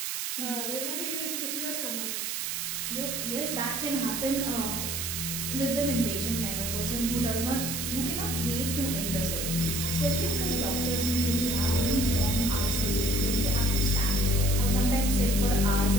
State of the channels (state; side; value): noise; right; hiss, 2 dB below the sound